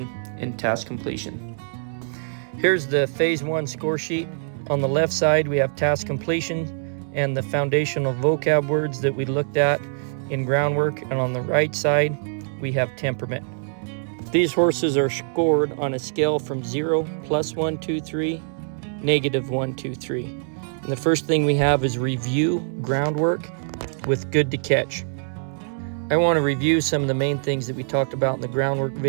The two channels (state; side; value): silent; left; digital silence